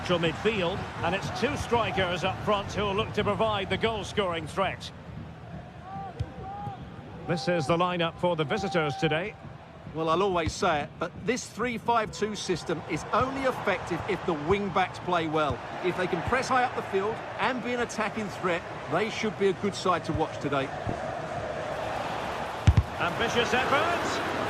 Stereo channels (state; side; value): identical; both; correlation 1.00